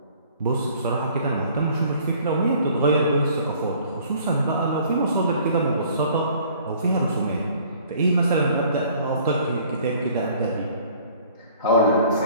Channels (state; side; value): inverted; both; correlation -0.55